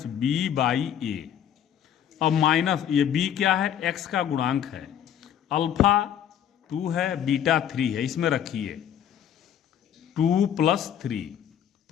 b बाई a। अब माइनस ये b क्या है? x का गुणांक है। अल्फा 2 है, बीटा 3 है, इसमें रखिए 2 प्लस 3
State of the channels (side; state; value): right; quieter; 9.6 dB